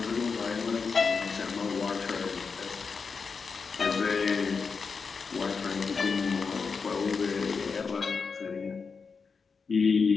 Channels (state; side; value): quieter; right; 5.2 dB